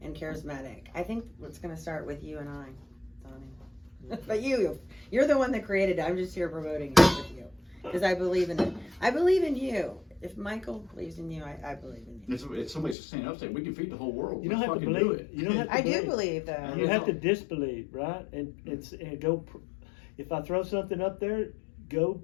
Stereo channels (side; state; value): right; drops out; at 13.0 s